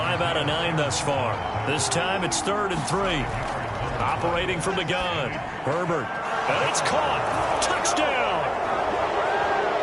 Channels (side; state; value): both; identical; correlation 1.00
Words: out of 9 thus far. This time it's 3rd and 3. Operating from the gun. Herbert And it's caught. Touchdown.